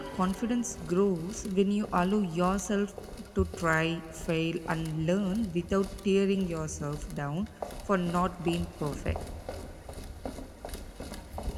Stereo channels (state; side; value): identical; both; correlation 1.00